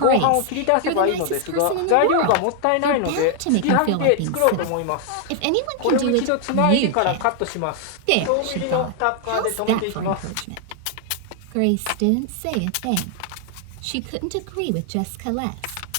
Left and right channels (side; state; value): both; different; correlation 0.00